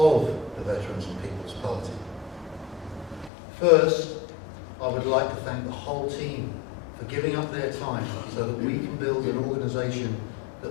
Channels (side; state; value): right; drops out; at 3.3 s